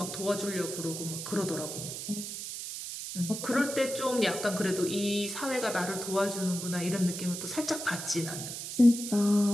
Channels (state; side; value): noise; right; hiss, 7 dB below the sound